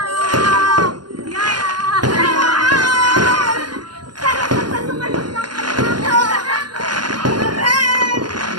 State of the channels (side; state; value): left; late; 0.71 ms